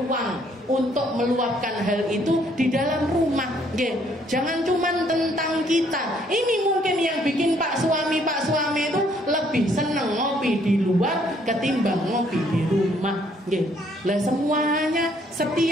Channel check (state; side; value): normal; both; correlation 0.66